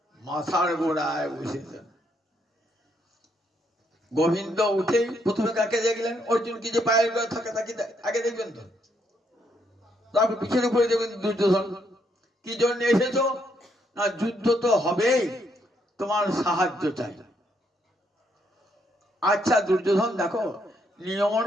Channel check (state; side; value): normal; both; correlation 0.74